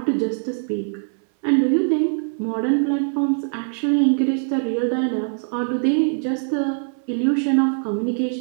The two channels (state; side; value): silent; left; 64 dB below the other